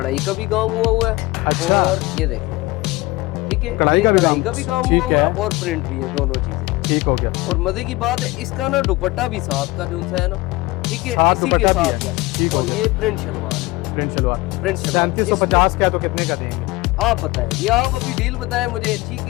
का भी काम हुआ है, अच्छा। और ये देखें, ठीक है, कढ़ाई ये का भी कढ़ाई काम, का भी काम ठीक हुआ है। है और प्रिंट भी है, दोनों चीजें। ठीक हो गया। और मजे की बात है इसका ना दुपट्टा भी साथ का जो सा है ना, ठीक है, साथ इसी के दुपट्टा भी साथ है, का। ठीक हो और गया। ये प्रिंट शलवार है, प्रिंट शलवार प्रिंट शलवार। 3750 का है, तो कितने का देंगे? आप बताएं, ये आप अभी डील बताएं मुझे, ठीक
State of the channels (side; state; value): right; quieter; 21.1 dB